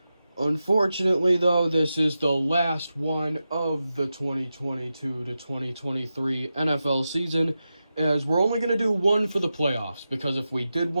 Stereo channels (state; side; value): inverted; both; correlation -0.91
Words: Unfortunately, though, this is the last one of the 2022 to 2023 NFL season, as we're only going to do one for the playoffs, because if we did